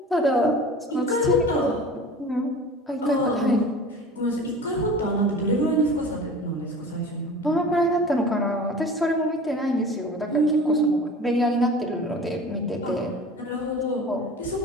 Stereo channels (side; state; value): both; normal; correlation 0.39